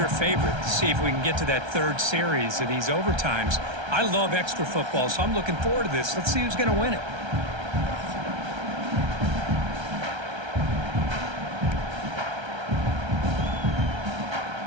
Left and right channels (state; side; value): late; left; 1.3 ms